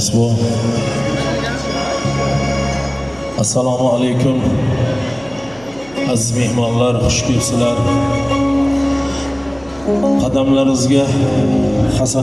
bu. Assalomu alaykum. Aziz mehmonlar, xush kelibsizlar. Qadamlaringizga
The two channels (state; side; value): noise; right; hum, 24 dB below the sound